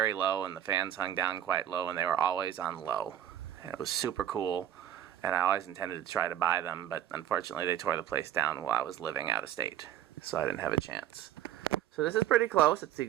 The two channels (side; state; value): left; quieter; 11.2 dB